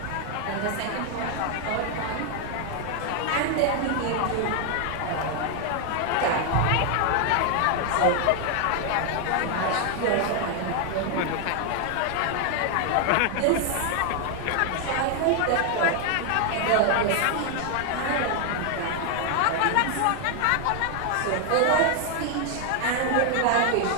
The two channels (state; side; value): different; both; correlation 0.00